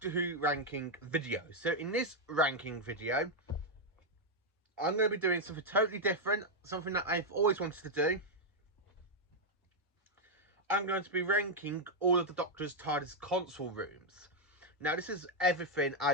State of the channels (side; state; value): both; normal; correlation -0.01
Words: Who ranking video. So in this ranking video, I'm going to be doing something totally different, something that I've always wanted to do. I'm going to be ranking all of the Doctor's TARDIS console rooms. Now, this is everything